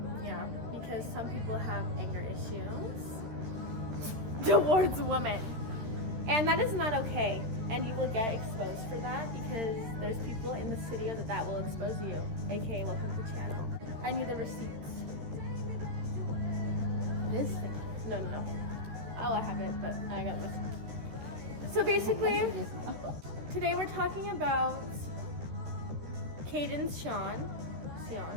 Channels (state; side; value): late; left; 13 ms